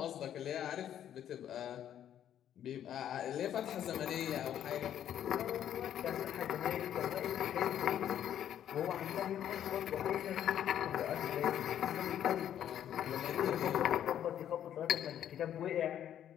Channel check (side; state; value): right; quieter; 10.4 dB